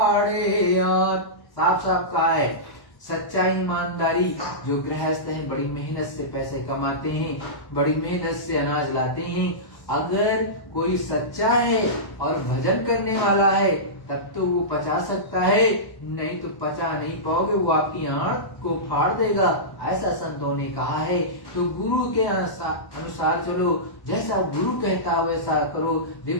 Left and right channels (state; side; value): late; right; 1.0 ms